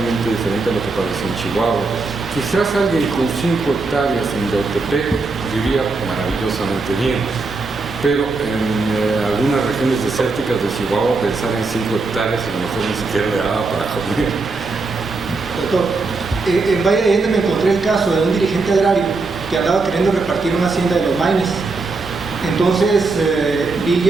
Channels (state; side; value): quieter; left; 3.8 dB